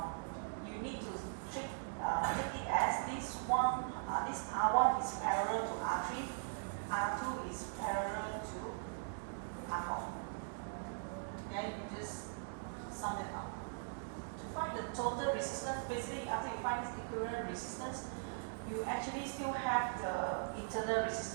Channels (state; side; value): silent; left; digital silence